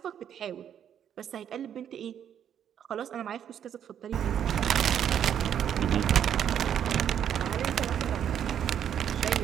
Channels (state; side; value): quieter; left; 9.3 dB